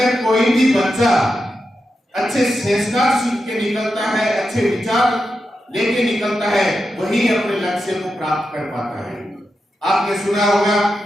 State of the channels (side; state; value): both; normal; correlation 0.88